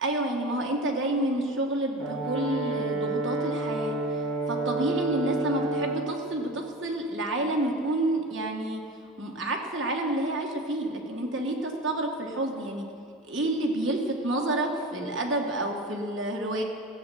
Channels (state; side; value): normal; both; correlation 0.32